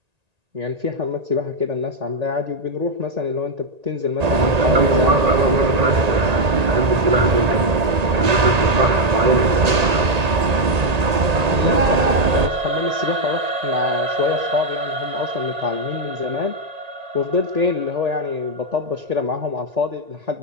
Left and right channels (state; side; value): late; left; 1.8 ms